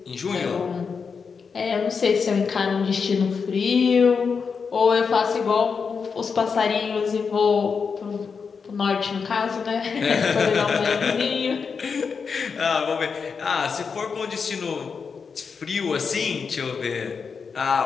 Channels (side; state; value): right; quieter; 5.6 dB